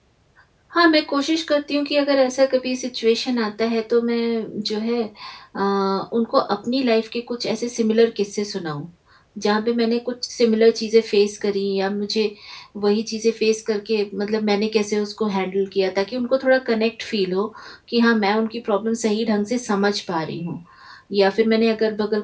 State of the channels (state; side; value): identical; both; correlation 1.00